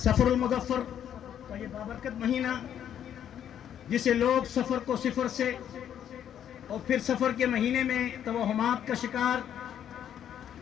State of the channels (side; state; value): right; quieter; 9.8 dB